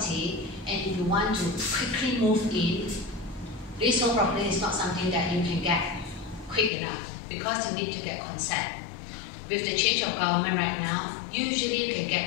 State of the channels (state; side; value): drops out; right; at 6.7 s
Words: and if you want to quickly move in, leasehold property is not something that you can get quick enough because you need to get consent. With the change of government right now, usually you can